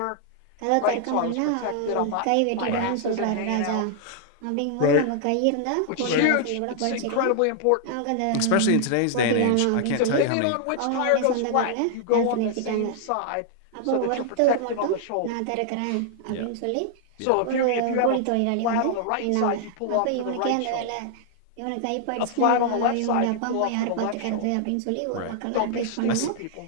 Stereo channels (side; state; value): both; different; correlation -0.01